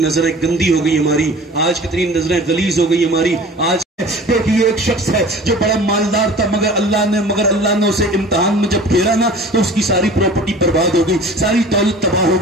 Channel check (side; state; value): both; normal; correlation 0.43